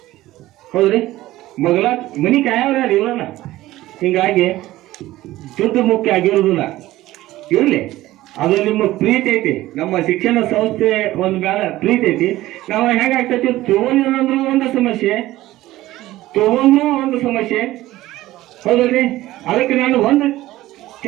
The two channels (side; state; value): left; quieter; 16.3 dB